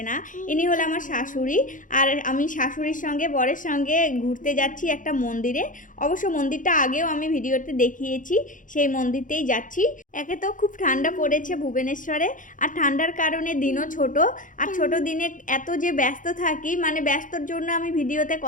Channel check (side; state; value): right; late; 0.38 ms